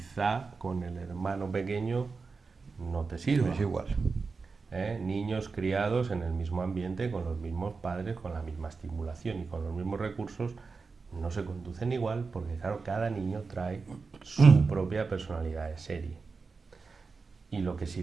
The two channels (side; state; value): left; quieter; 4.5 dB